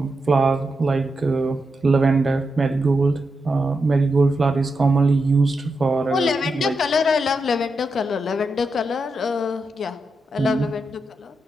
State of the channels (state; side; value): normal; both; correlation 0.86